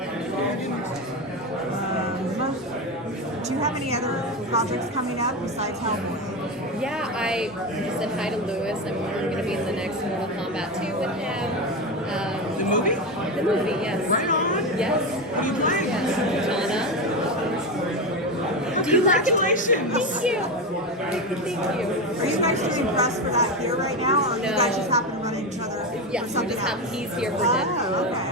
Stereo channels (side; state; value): both; normal; correlation 0.17